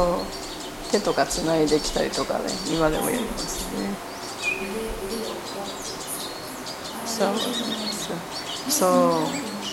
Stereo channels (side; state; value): both; identical; correlation 1.00